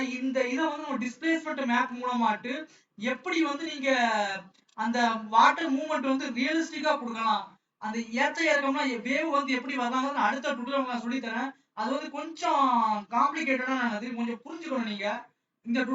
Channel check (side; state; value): both; identical; correlation 1.00